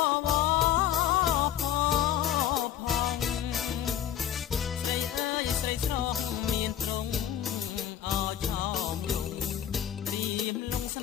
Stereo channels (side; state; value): right; quieter; 10.5 dB